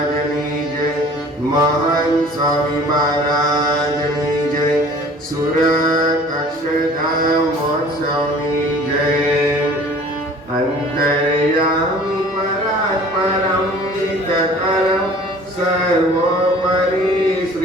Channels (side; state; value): both; normal; correlation 0.48